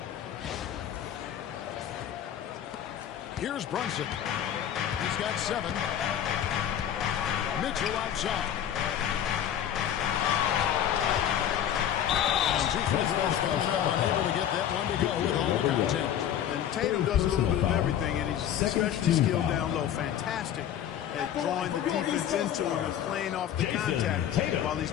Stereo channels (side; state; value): right; quieter; 10.2 dB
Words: Here's Brunson. He's got 7. Mitchell outside. And 2 free throws coming up, unable to get that one to go with all the content. And Tatum does a little bit of everything, and he's especially skilled down low. Fantastic at drawing the defense into him and playing off the contact while he's